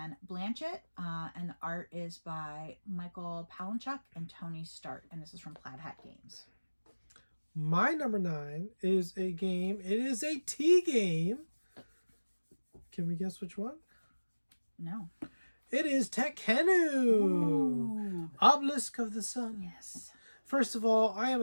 Blanchett, and the art is by Michael Palinchuk and Tony Start, and this is from Plaid Hat Games. My number 9 is a game. It is a tea game. Can we guess which one? No. It is Tekkenu. Obelisk of the Sun. Yes. First of all, I am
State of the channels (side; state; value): both; inverted; correlation -1.00